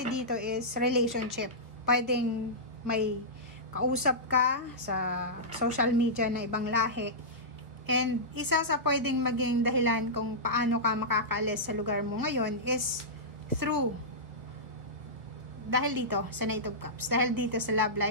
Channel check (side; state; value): left; late; 1.2 ms